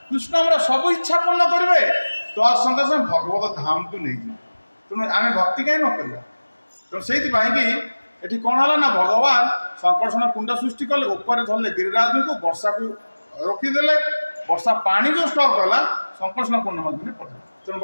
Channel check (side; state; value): both; inverted; correlation -1.00